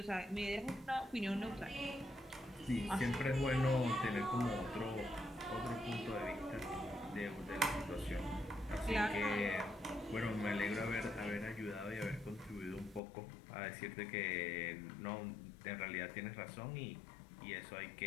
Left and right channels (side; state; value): right; drops out; at 13.0 s